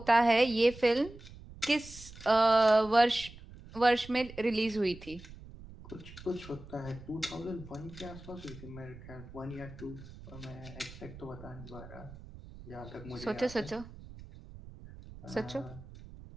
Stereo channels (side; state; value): right; noise; rumble, 17 dB below the sound